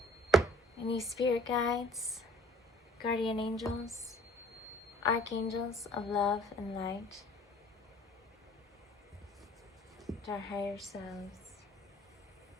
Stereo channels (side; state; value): both; normal; correlation 0.52